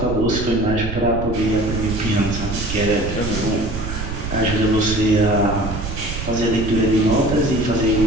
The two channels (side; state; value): right; noise; rumble, 6 dB below the sound